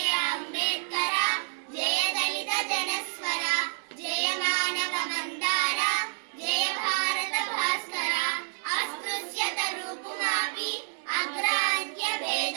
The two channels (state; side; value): silent; left; 59 dB below the other